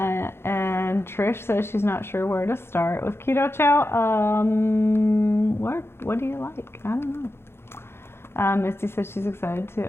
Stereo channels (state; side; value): late; right; 0.12 ms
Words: And Trish says she's not sure where to start with Keto Chow. What do you like? I don't know. Misty says she's excited